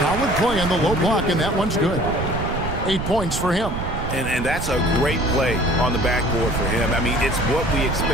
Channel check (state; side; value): noise; right; rumble, 5 dB below the sound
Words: play on the low block, and that one's good. 8 points for him. And that's a great play on the backboard for him. I mean, it's what we